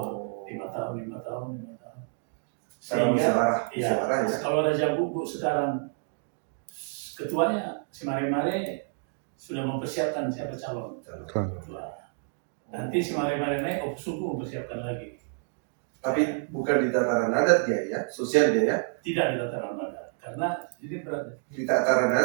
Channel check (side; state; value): left; silent; 57 dB below the other